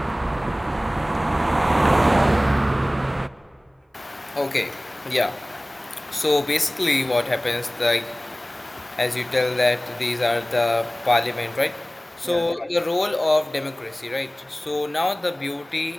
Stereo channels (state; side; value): normal; both; correlation 0.98